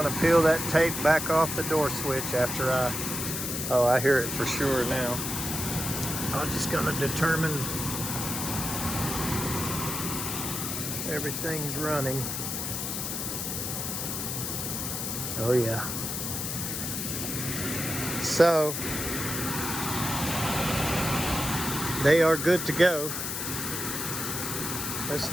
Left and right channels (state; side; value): noise; left; hiss, 3 dB below the sound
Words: to peel that tape back off the door switch after I hear it for sure now. I'm just going to determine everything's running. Oh yeah. So they are good to go. Let's